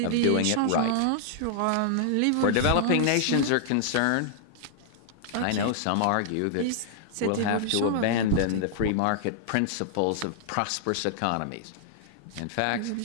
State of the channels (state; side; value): different; both; correlation -0.01